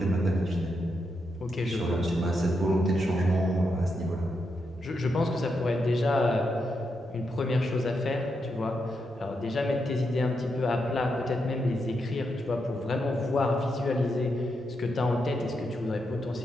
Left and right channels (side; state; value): both; normal; correlation 0.83